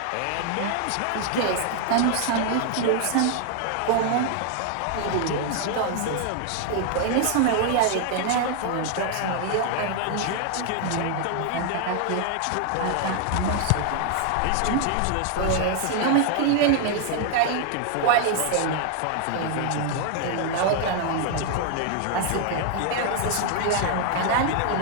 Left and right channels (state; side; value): different; both; correlation 0.00